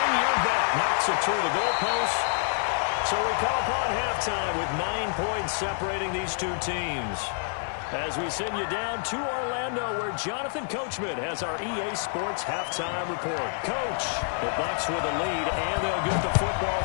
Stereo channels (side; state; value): right; silent; 60 dB below the other